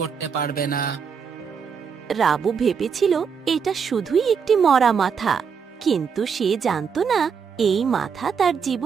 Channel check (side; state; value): left; quieter; 6.4 dB